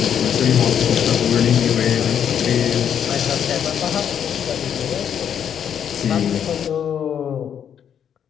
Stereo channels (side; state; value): right; quieter; 8.7 dB